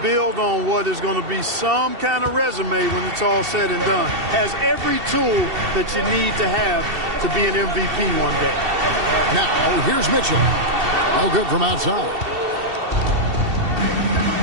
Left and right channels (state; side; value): late; left; 2.7 ms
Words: build on what is going to be some kind of resume when it's all said and done. Has every tool that you need to have to be an MVP one day. Now, here's Mitchell. No good from outside.